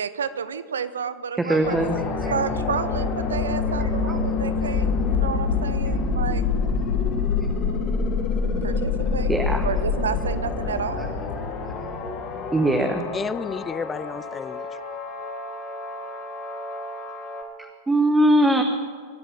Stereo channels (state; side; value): normal; both; correlation 0.32